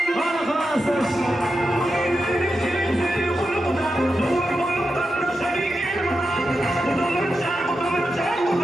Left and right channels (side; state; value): both; normal; correlation 0.89